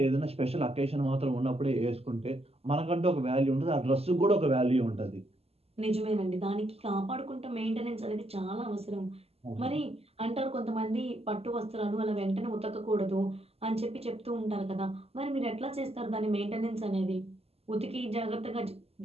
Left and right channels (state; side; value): late; left; 0.29 ms